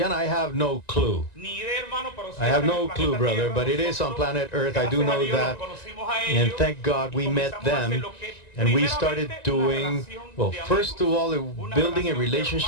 I have no clue. I have no clue, brother, but it is on planet Earth. I do know that. And thank God we met them. And we started doing, well, first of all, building a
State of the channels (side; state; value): right; late; 1.9 ms